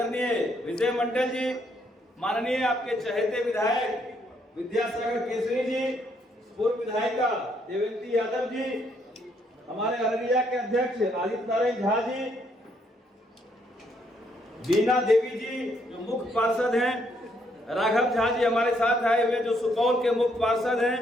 विजय मंडल जी, माननीय आपके चहेते विधायक विद्यासागर केसरी जी, पूर्व विधायिका देवेंद्र यादव जी, हमारे अररिया के अध्यक्ष आदित्य नारायण झा जी, बीना देवी जी जो मुख्य पार्षद हैं, राघव झा जी हमारे साथ आए हुए जो सुपौल के मुख्य पार्षद हैं,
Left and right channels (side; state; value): both; normal; correlation 0.72